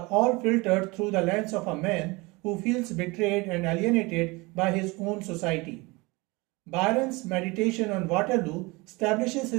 all filtered through the lens of a man who feels betrayed and alienated by his own society. Byron's meditation on Waterloo establishes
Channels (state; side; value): quieter; left; 24.6 dB